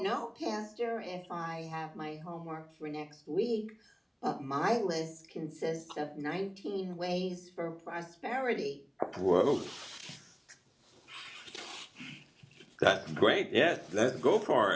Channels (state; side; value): identical; both; correlation 1.00